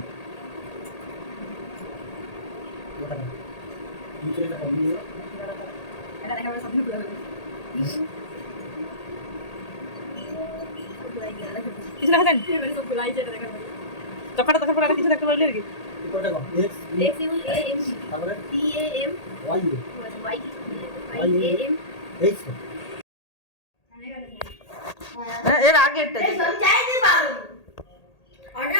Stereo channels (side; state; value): right; late; 1.8 ms